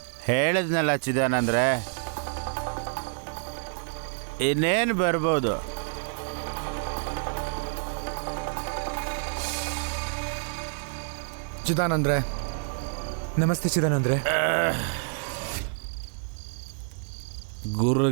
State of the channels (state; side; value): silent; left; 59 dB below the other